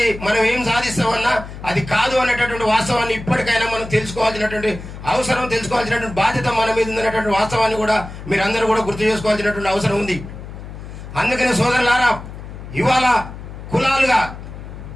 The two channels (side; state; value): left; noise; hum, 12 dB below the sound